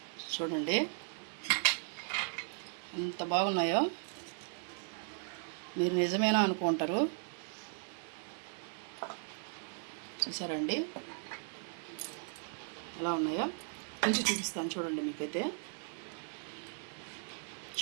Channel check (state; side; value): silent; left; 53 dB below the other